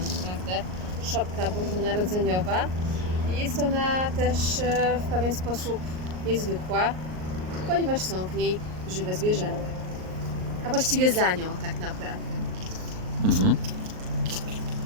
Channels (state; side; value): late; left; 38 ms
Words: szopka bożonarodzeniowa. I jest ona też w pewien sposób niezwykła, ponieważ są w niej żywe zwierzęta. A właściwie za nią tak naprawdę. Mhm.